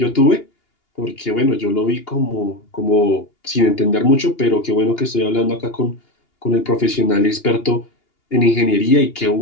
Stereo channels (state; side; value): late; right; 2.8 ms